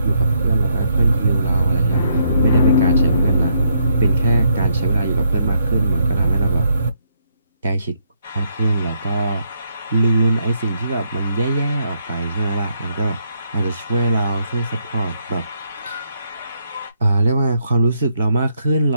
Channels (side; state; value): both; inverted; correlation -0.74